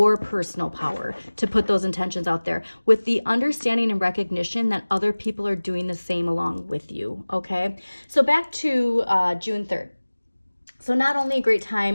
personal power to put those intentions out there with the understanding and recognition that other people are doing the same along with you, okay? So back to June 3rd. So not only a great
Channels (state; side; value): inverted; both; correlation -1.00